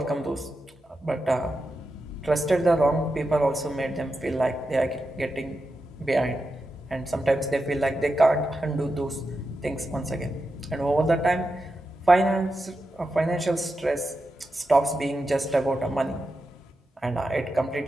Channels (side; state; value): both; normal; correlation 0.89